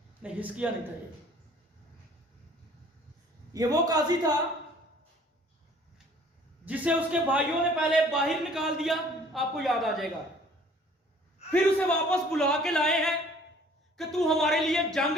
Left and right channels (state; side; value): normal; both; correlation 0.54